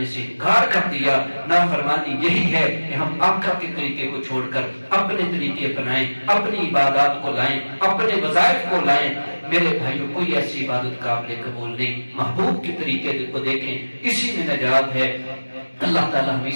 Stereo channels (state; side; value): inverted; both; correlation -1.00